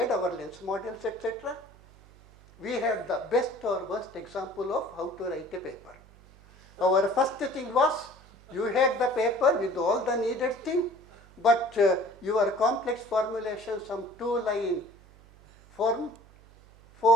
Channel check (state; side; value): noise; right; hum, 25 dB below the sound